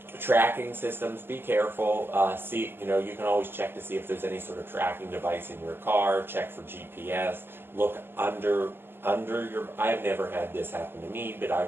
Tracking systems, be careful. You can always check to see if there's any sort of tracking device in your car. Check for GPS. Look under your. I have never had this happen to me, but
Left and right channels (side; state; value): left; late; 0.10 ms